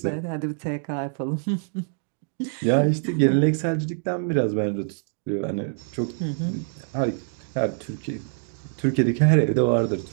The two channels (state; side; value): silent; left; digital silence